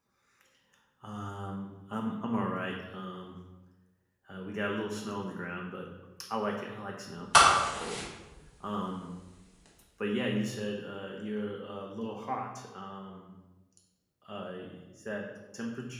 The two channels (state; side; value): identical; both; correlation 1.00